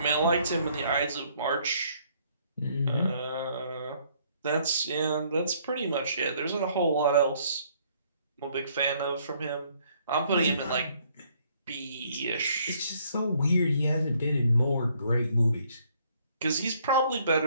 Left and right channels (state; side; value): inverted; both; correlation -0.65